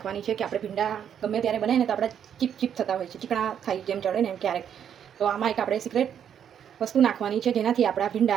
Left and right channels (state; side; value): quieter; left; 8.8 dB